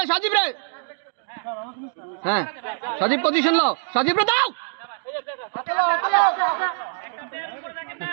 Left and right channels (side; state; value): left; silent; digital silence